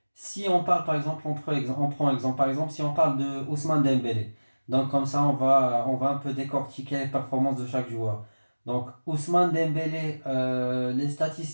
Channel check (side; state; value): both; inverted; correlation -1.00